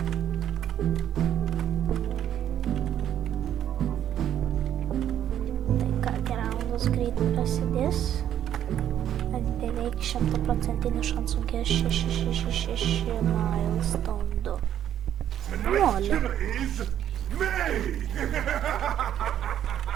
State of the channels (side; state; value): left; quieter; 10.5 dB